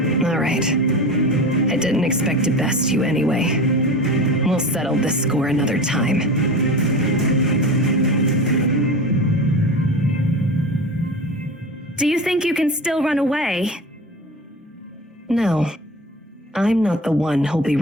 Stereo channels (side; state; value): both; normal; correlation 0.31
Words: All right. I didn't expect to best you anyway. We'll settle this score another time. Do you think you can still run away? No. I'm not the one who'll be